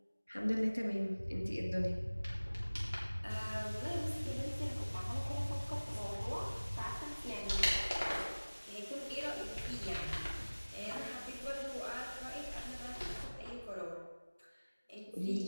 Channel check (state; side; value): inverted; both; correlation -1.00